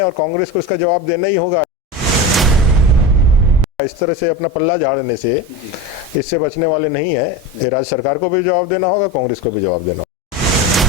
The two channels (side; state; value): both; normal; correlation 0.24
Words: और कांग्रेस को इसका जवाब देना ही होगा। इस तरह से अपना पल्ला झाड़ने से इससे बचने वाले नहीं है। ये राज्य सरकार को भी जवाब देना होगा, कांग्रेस को भी जवाब देना होगा।